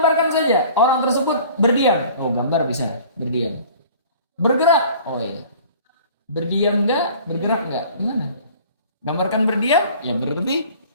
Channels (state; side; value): inverted; both; correlation -0.47